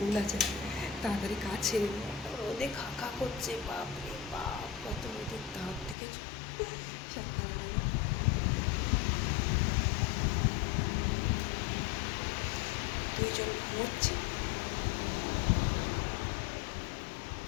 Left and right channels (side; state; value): right; drops out; at 6.0 s